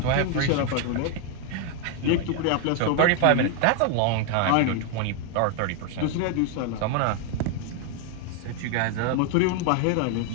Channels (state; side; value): different; both; correlation 0.01